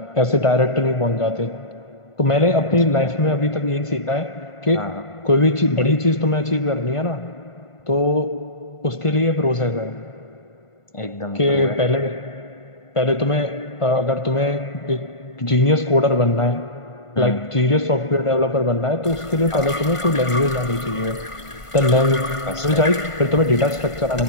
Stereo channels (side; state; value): right; late; 1.5 ms